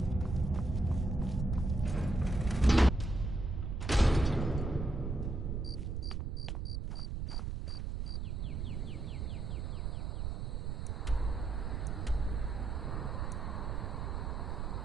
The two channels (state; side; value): noise; right; rumble, 2 dB below the sound